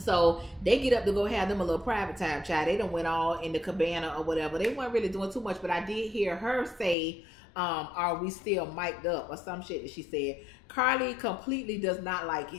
they get up to go have them a little private time, child. They done went all in the cabana or whatever. They weren't really doing too much, but I did hear her say, are we still mic'd up, or some shit that she said. Carly completely does not like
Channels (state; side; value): drops out; right; at 7.0 s